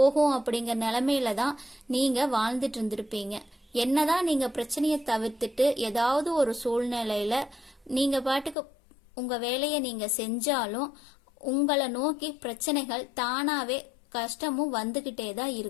அப்படிங்கிற நிலைமையில தான் நீங்க வாழ்ந்துட்டு இருந்திருப்பீங்க. என்னதான் நீங்க பிரச்சனையை தவிர்த்துட்டு ஏதாவது ஒரு சூழ்நிலையில நீங்க பாட்டுக்கு உங்க வேலையை நீங்க செஞ்சாலும் உங்களை நோக்கி பிரச்சனைகள் தானாவே கஷ்டமும் வந்துகிட்டே தான்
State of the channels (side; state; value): right; drops out; at 8.6 s